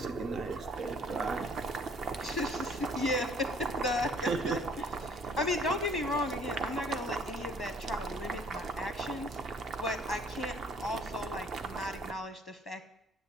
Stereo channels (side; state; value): both; normal; correlation 0.57